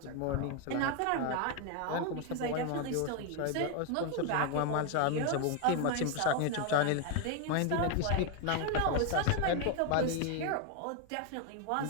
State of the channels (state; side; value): different; both; correlation 0.01